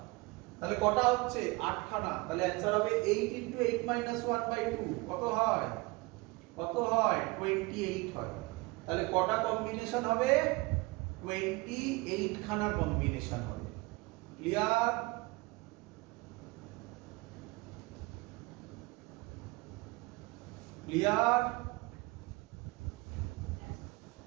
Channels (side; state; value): left; quieter; 24.4 dB